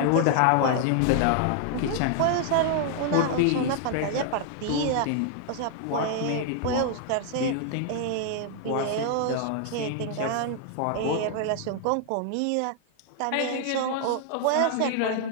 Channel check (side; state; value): both; different; correlation 0.00